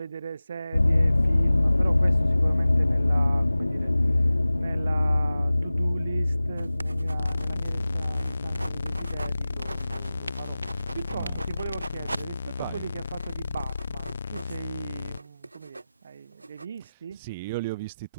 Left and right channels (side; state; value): both; inverted; correlation -0.96